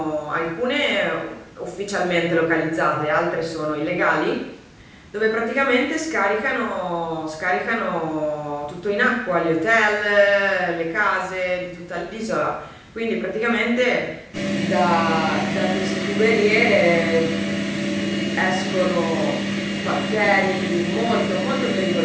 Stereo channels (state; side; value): identical; both; correlation 1.00